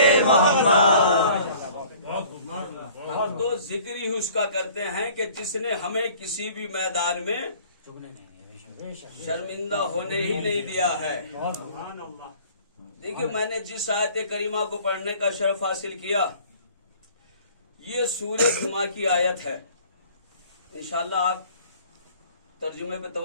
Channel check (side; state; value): both; inverted; correlation -0.51